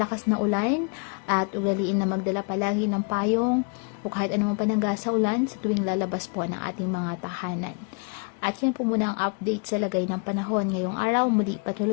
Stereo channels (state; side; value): quieter; right; 35.4 dB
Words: na ulan, at ugaliin na magdala palagi ng payong o kahit anumang panangga sa ulan sa tuwing lalabas po ng ating mga tahanan. At yan po muna ang update sa lagay ng panahon ngayong araw. Muli